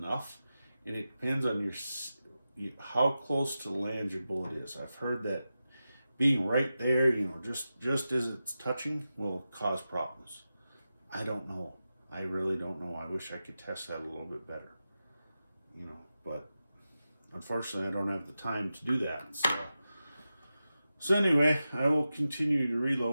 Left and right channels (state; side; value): inverted; both; correlation -0.92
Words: and it depends on how close to the land your bullet is. I've heard that being right there, you know, just as it's touching, will cause problems. I don't know. I really don't know. I wish I could test that a little bit better, you know, but unfortunately, I don't have the time to do that. So anyway, I will continue to